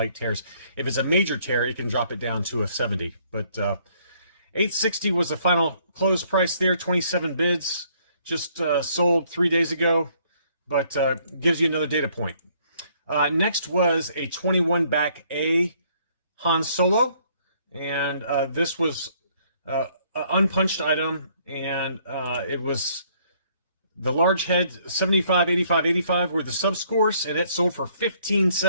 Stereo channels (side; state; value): both; inverted; correlation -0.65